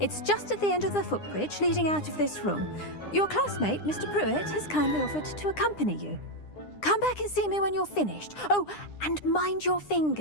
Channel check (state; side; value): late; right; 9.8 ms